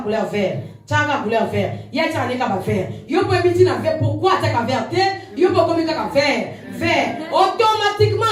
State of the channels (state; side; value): identical; both; correlation 1.00